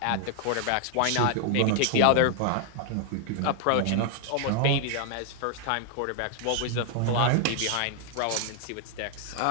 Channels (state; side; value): different; both; correlation 0.00